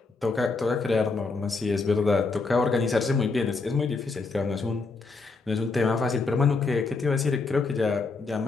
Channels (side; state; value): right; quieter; 4.0 dB